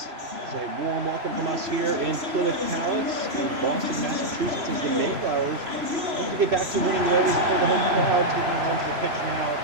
It's a warm welcome from us here in Plymouth Palace in Boston, Massachusetts, as the Mayflowers look to get back to winning ways before the home crowd taking onto the pitch now.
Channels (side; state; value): left; late; 3.0 ms